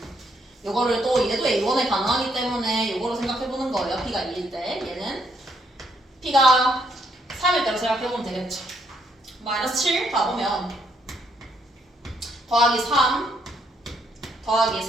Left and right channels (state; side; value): normal; both; correlation 0.73